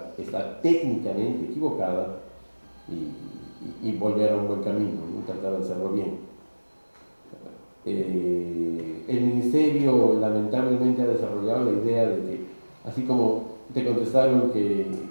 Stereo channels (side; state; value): both; inverted; correlation -1.00